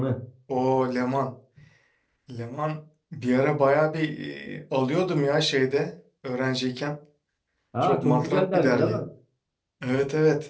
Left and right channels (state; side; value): identical; both; correlation 1.00